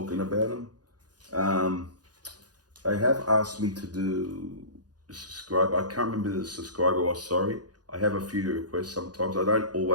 about them. They have asked me to do subscribe. I can't remember the subscriber was, sorry. I have a few requests sometimes. I don't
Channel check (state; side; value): late; left; 0.69 ms